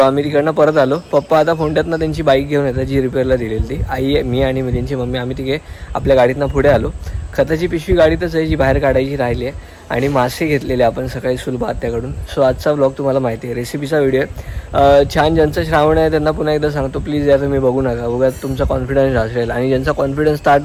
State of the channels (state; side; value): identical; both; correlation 1.00